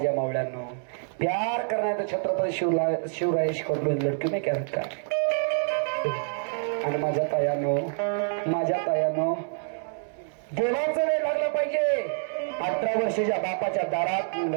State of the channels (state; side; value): silent; left; 60 dB below the other